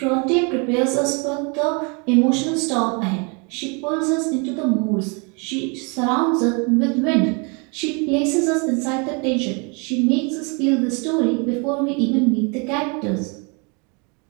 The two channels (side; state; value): left; quieter; 33.2 dB